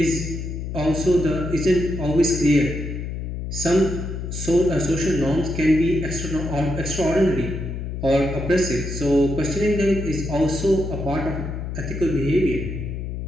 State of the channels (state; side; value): noise; left; hum, 5 dB below the sound